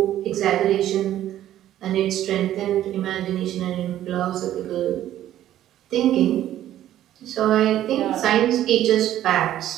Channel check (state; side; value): quieter; left; 12.5 dB